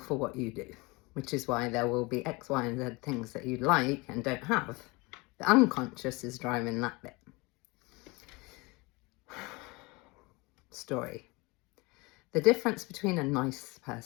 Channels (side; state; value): right; quieter; 25.4 dB